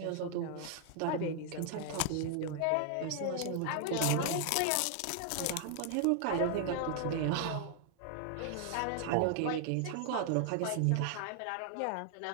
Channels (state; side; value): different; both; correlation 0.00